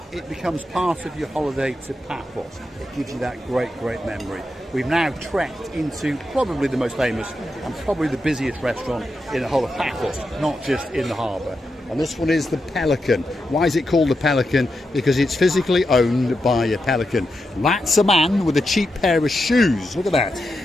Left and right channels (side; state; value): both; normal; correlation 0.87